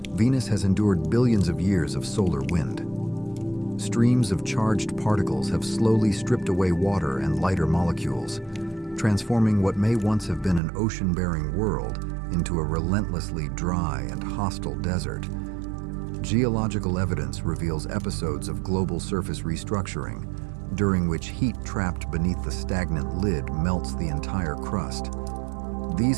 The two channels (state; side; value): drops out; left; at 10.6 s